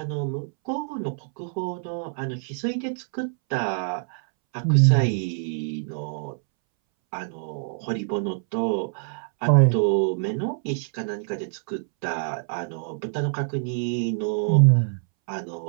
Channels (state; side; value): silent; left; 61 dB below the other